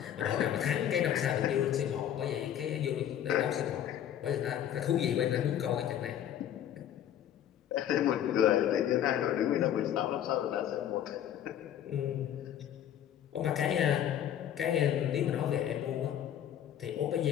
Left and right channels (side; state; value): right; quieter; 10.4 dB